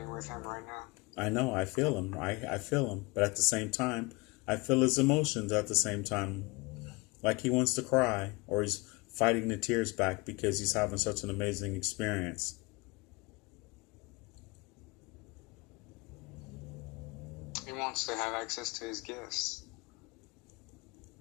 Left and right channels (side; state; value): right; quieter; 26.2 dB